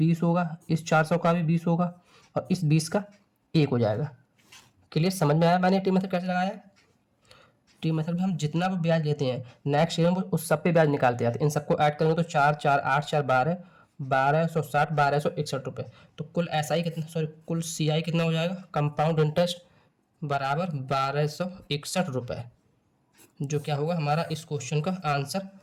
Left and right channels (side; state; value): both; identical; correlation 1.00